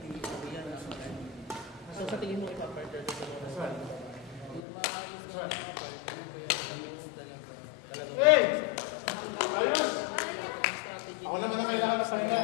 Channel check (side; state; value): right; drops out; at 4.6 s